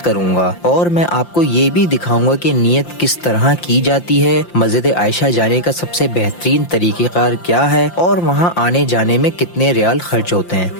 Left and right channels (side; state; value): right; late; 5.8 ms